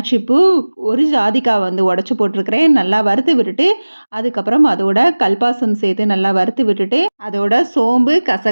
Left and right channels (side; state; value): both; inverted; correlation -1.00